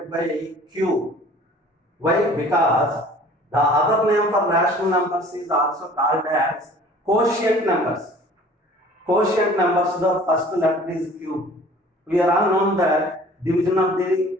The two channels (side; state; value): both; normal; correlation 0.49